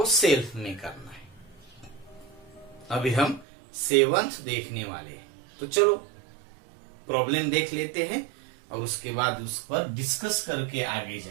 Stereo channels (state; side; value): drops out; left; at 3.5 s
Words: सेल्फ में करना है। अभी हम 7th देखने वाले हैं, तो चलो प्रॉब्लम देख लेते हैं और उसके बाद उस पर डिस्कस करके आगे